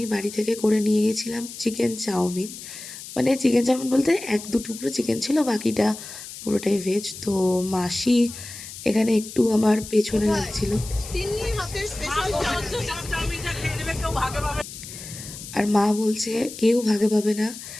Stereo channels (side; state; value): left; noise; hiss, 12 dB below the sound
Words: বাড়ি থেকে করে নিয়ে গেছিলাম চিকেন চাউমিন। মানে চিকেন চাউমিন বলতে 1-2 টুকরো চিকেন ছিল, বাকিটা পুরোটাই ভেজ। তো মাসি এখানে একটু আমার পেছনে লাগছিল। তিন্নি হাতের স্পেশাল চাউমিনটা খেয়ে নেবে, কেউ ভাগে পাবে। আর মা বলছে কেউ ভাগে পাবে না,